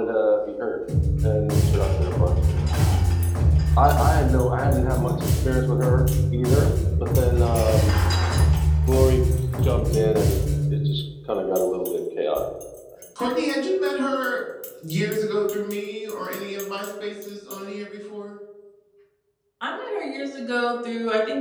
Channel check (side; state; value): both; identical; correlation 1.00